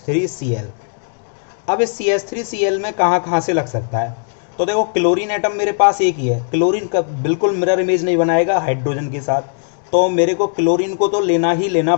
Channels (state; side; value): silent; right; digital silence